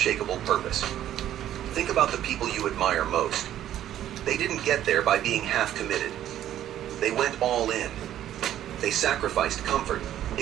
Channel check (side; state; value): left; quieter; 11.7 dB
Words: purpose. Think about the people you admire most. They didn't get there by being half committed. They went all in. They sacrificed comfort,